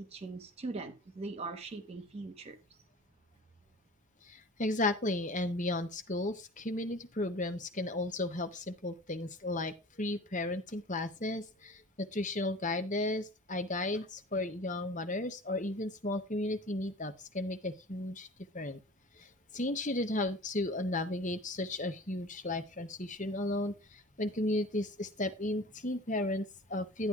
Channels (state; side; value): normal; both; correlation 0.41